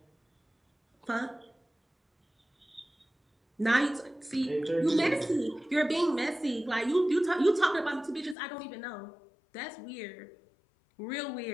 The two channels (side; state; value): right; drops out; at 8.3 s